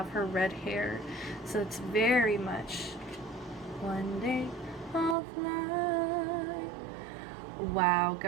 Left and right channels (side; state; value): left; drops out; at 5.2 s